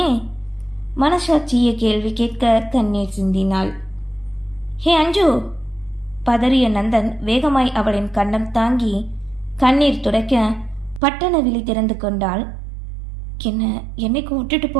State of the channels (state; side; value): drops out; left; at 11.0 s